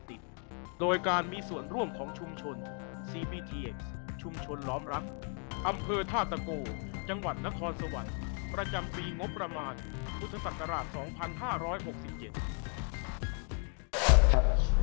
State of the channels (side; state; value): right; quieter; 39.6 dB